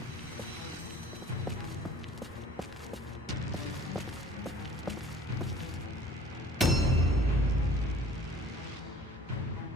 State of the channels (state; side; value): normal; both; correlation 0.49